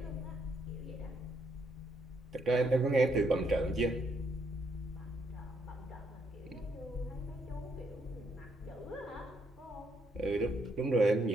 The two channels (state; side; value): normal; both; correlation 0.74